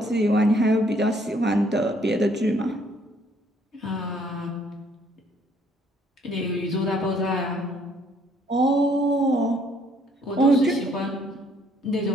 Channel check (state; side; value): normal; both; correlation 0.65